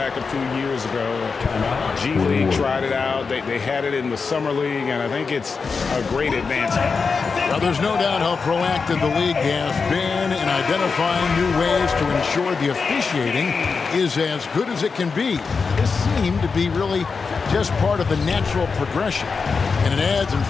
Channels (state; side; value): quieter; right; 5.0 dB